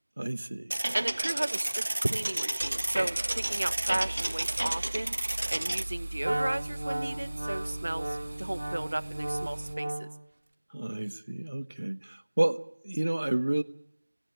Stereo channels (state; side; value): inverted; both; correlation -1.00